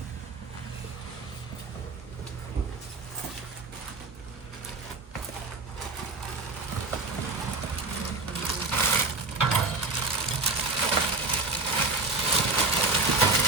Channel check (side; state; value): left; quieter; 3.5 dB